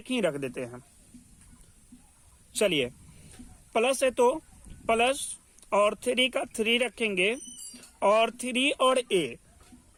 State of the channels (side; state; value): both; identical; correlation 1.00